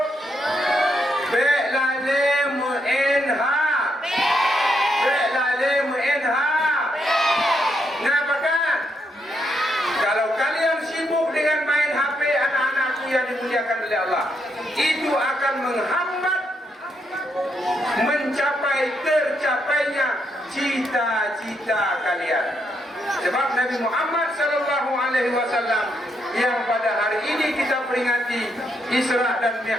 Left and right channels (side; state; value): both; normal; correlation 0.78